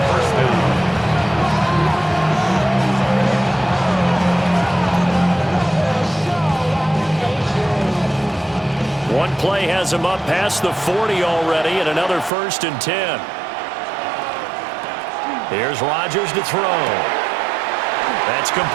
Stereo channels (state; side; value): drops out; left; at 12.3 s